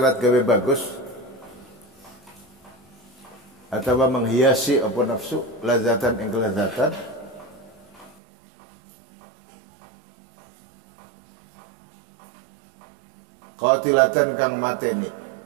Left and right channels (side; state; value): left; drops out; at 8.2 s